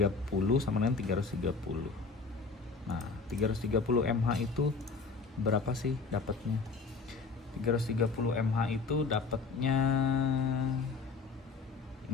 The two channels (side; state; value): right; quieter; 4.5 dB